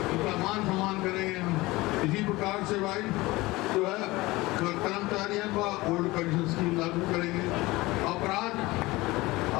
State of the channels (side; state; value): right; quieter; 20.6 dB